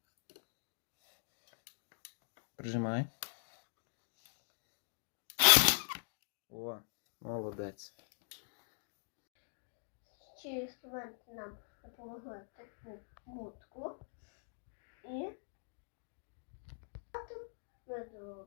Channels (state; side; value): silent; right; digital silence